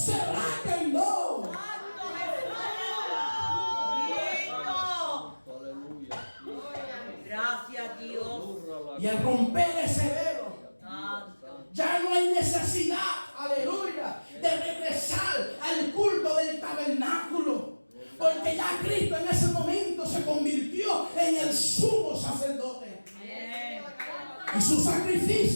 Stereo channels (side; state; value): both; inverted; correlation -1.00